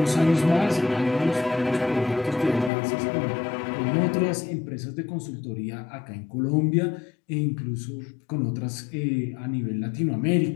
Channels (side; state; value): right; drops out; at 2.7 s